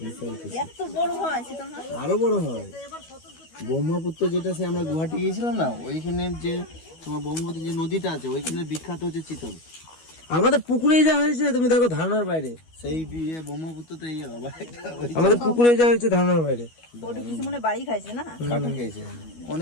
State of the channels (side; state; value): right; late; 12 ms